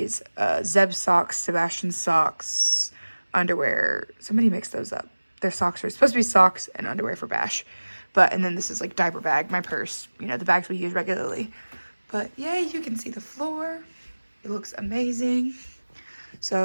Zeb's socks, Sebastian's socks, underwear. Somebody mixed those up. Their socks are supposed to be socks and underwear for Bash. And then this is like diaper bag, my purse, you know, the bags we use regularly. But yay, you can see the floor. It looks amazing.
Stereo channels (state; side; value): inverted; both; correlation -1.00